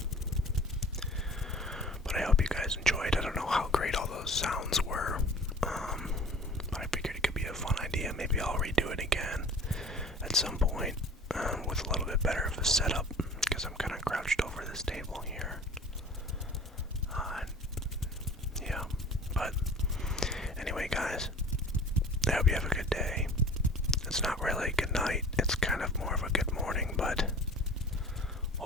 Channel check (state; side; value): normal; both; correlation 0.44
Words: But I hope you guys enjoyed. I don't know how great all those sounds were, but I figured it could be a fun idea. Maybe I'll redo it again at some point with a little bit better of a setup, because I'm kind of crouched over this table here. Yeah, but anyway guys, I hope you have a good day. It's not really a good night, it's kind of more of a good morning, but